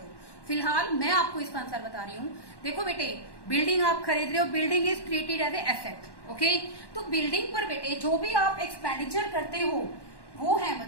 फिलहाल मैं आपको इसका आंसर बता रही हूँ। देखो बेटे, बिल्डिंग आप खरीद रहे हो, building is treated as a asset, okay. तो बिल्डिंग पर बेटे जो भी आप एक्सपेंडिचर करते हो वो है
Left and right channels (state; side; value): late; right; 1.1 ms